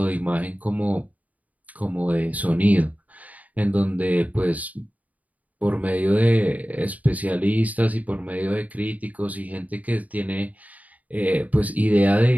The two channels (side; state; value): left; late; 0.073 ms